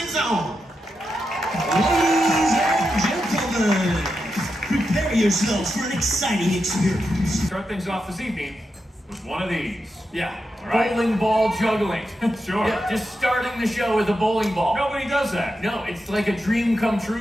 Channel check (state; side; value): normal; both; correlation 0.87